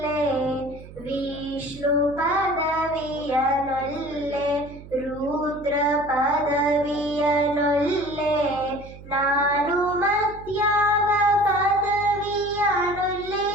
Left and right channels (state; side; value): noise; right; hum, 17 dB below the sound